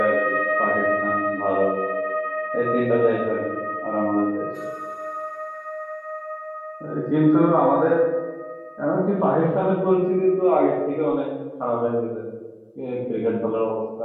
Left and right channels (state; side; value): identical; both; correlation 1.00